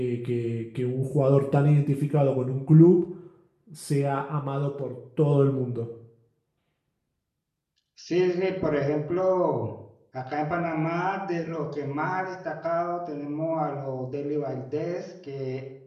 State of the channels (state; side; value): identical; both; correlation 1.00